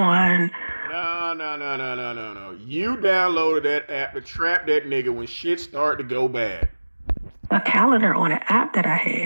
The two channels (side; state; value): both; inverted; correlation -1.00